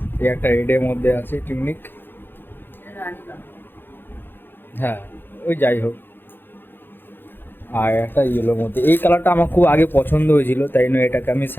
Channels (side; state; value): right; late; 0.10 ms